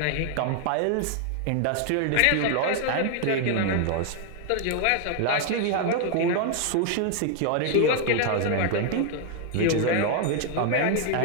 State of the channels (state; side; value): different; both; correlation 0.00